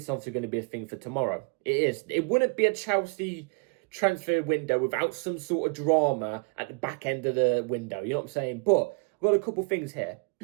going to be a thing for tomorrow. It is. It wouldn't be a Chelsea transfer window without some sort of drama at the back end of the window. You know what I'm saying? But I've got a couple things here.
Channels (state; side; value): quieter; left; 32.6 dB